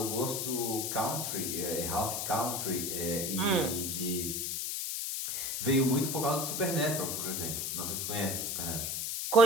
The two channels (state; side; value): noise; left; hiss, 2 dB below the sound